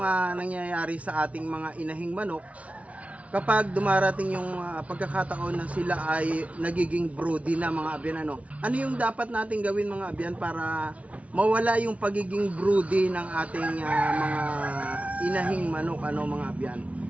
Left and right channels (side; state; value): left; late; 0.065 ms